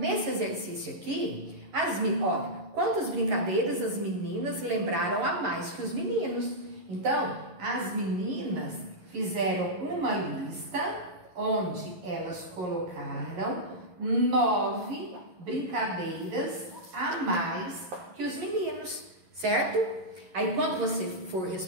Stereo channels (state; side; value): late; left; 11 ms